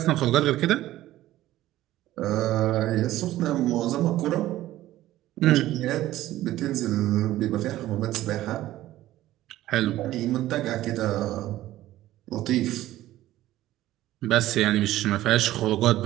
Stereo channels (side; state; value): left; quieter; 14.9 dB